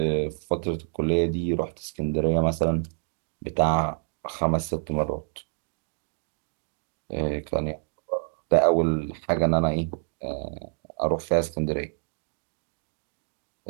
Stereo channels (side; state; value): left; silent; 60 dB below the other